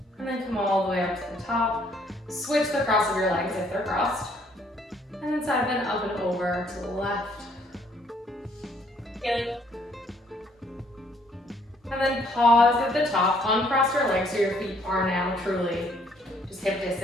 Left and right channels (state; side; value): normal; both; correlation 0.65